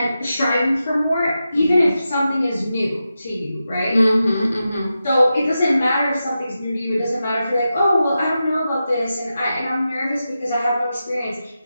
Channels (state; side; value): inverted; both; correlation -0.90